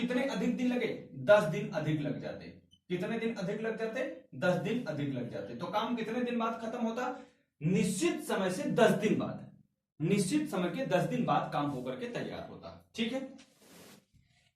अधिक दिन लगे 10 दिन अधिक लग जाते। कितने दिन अधिक लग जाते 10 दिन अधिक लग जाते। तो काम कितने दिन बाद खत्म होता निश्चित समय से 10 दिन बाद, निश्चित समय के 10 दिन बाद काम होकर के तैयार होता। ठीक है।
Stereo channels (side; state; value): both; identical; correlation 1.00